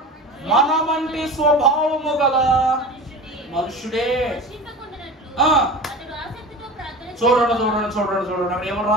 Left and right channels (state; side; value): normal; both; correlation 0.33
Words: మన వంటి స్వభావము గల మనుషుడే. చూడండి అక్కడ ఏమో